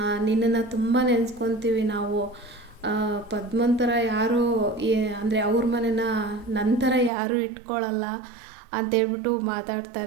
ನಿನ್ನನ್ನು ತುಂಬ ನೆನೆಸ್ಕೊತೀವಿ ನಾವು, ಪದ್ಮನ್ ಥರ ಯಾರೂ ಅಂದರೆ ಅವ್ರ ಮನೇನ ನನ್ನ ಥರ ಯಾರೂ ಇಟ್ಕೊಳ್ಳಲ್ಲ ಅಂತೇಳ್ಬಿಟ್ಟು ಮಾತಾಡ್ತಾ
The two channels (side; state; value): left; drops out; at 7.1 s